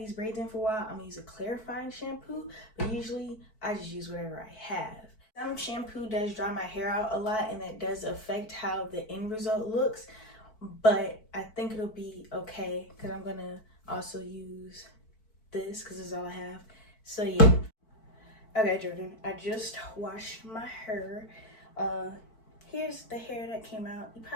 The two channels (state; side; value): late; right; 4.5 ms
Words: braids in for a while, I'm gonna use a clarifying shampoo, but usually I just use whatever I have. Some shampoo does dry my hair out a lot, and that does affect how the end result looks, but I think it'll be okay because I'm gonna also use this because this is all I have. So yeah. Okay, Jordan, I just washed my hair. Here's the hair that came out. You